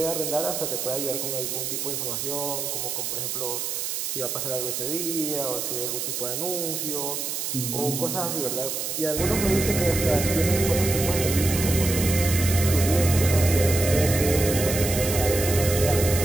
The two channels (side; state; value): right; noise; hiss, 3 dB below the sound